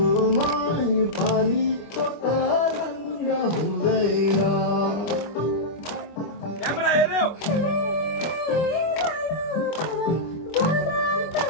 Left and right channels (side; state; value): right; late; 25 ms